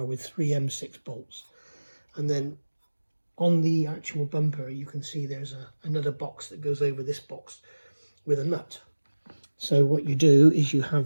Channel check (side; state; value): both; inverted; correlation -1.00